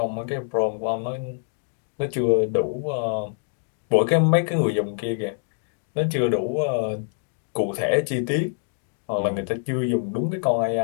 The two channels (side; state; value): right; silent; digital silence